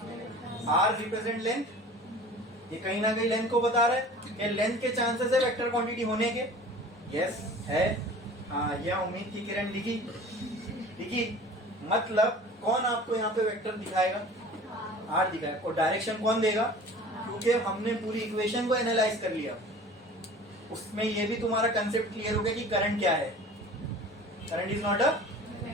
आर रिप्रेजेंट लेंथ, ये कहीं ना कहीं लेंथ को बता रहा है कि लेंथ के चांसेस है वेक्टर क्वांटिटी होने के। यस है, हाँ यह उम्मीद की किरण लिखी। मतलब कौन आपको यहाँ पे वेक्टर दिखाएगा? आर दिखाएगा। और डायरेक्शन कौन देगा? क्योंकि हमने पूरी इक्वेशन को एनालाइज कर लिया, उसमें ये भी तुम्हारा कंसेप्ट क्लियर हो गया कि करंट क्या है। करंट इज नॉट अ,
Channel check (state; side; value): normal; both; correlation 0.43